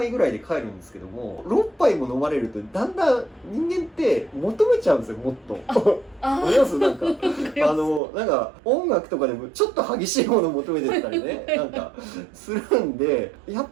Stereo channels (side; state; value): left; drops out; at 8.0 s